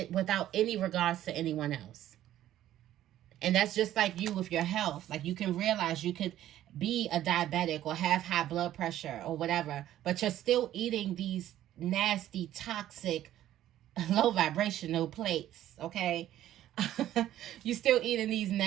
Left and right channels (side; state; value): left; quieter; 12.8 dB